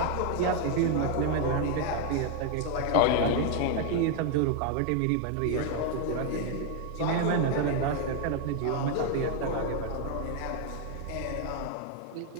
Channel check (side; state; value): both; different; correlation 0.00